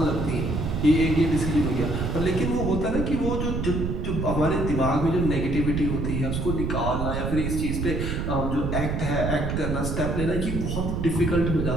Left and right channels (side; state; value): right; noise; rumble, 1 dB below the sound